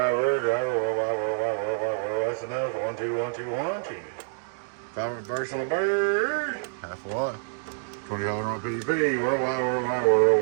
that's enough. 1, 2, 1, 2, 1, 2. 5 reverse on the bird. Half a watt. 20 on PEP. Worldwide.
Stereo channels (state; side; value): silent; left; digital silence